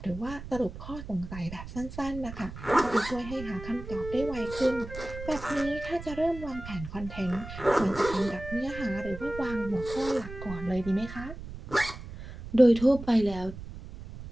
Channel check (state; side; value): noise; right; rumble, 12 dB below the sound